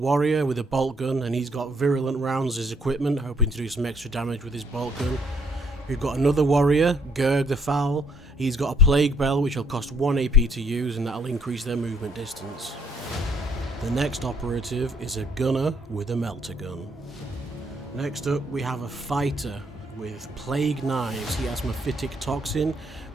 with a bolt gun, and he's got virulent rounds as equipment, hoping to do some extra damage with his bolt gun. We've got another warrior, Gerg the Foul. He's got a plague bell which will cost 1 AP to use, and that'll increase their movement distance. The next operative is a gunner with a melter gun. Next up we have a fighter with plague knives. He has mephitic toxin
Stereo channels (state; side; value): normal; both; correlation 0.67